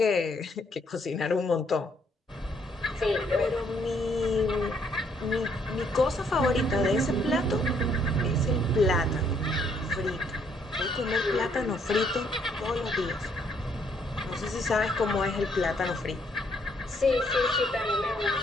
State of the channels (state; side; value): normal; both; correlation 0.69